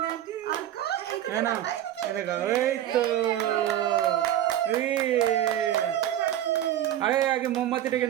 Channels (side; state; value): left; quieter; 11.9 dB